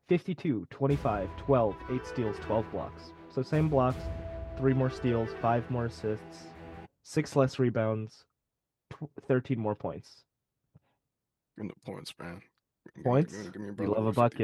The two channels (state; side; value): identical; both; correlation 1.00